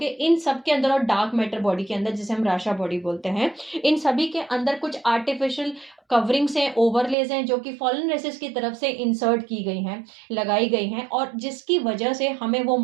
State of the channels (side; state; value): left; drops out; at 7.2 s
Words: इन सब के अंदर, और डार्क मैटर बॉडी के अंदर जिसे हम राशा बॉडी बोलते हैं, इन सभी के अंदर कुछ आर्टिफिशियल कवरिंग्स हैं, ओवरलेज हैं, जो कि फॉलन रेसेस की तरफ से इंसर्ट की गई हैं, लगाई गई हैं, और जिसकी वजह से हमें वो